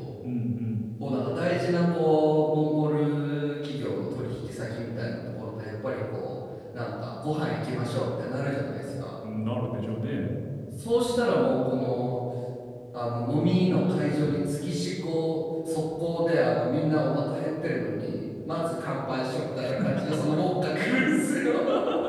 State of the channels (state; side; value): identical; both; correlation 1.00